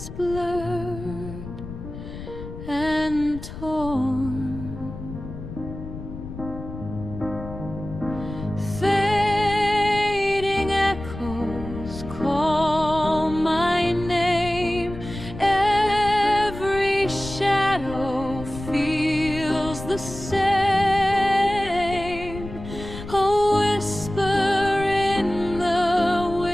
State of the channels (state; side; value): noise; left; rumble, 11 dB below the sound